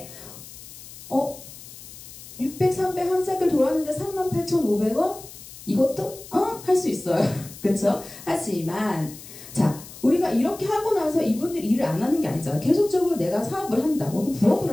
600, 300 한 사이클 돌았는데 38,500원? 이것도 할 수 있어요. 그쵸? 하지만 자, 우리가 이렇게 하고 나서 이분들이 일을 안 하는 게 아니잖아. 계속적으로 내가 사업을 한다, 혹은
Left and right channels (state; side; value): noise; left; hiss, 16 dB below the sound